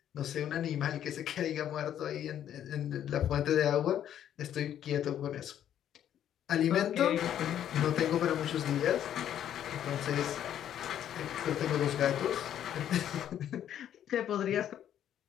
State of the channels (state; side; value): quieter; right; 10.5 dB